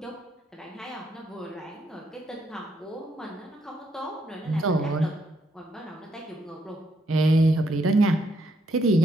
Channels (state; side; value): normal; both; correlation 0.74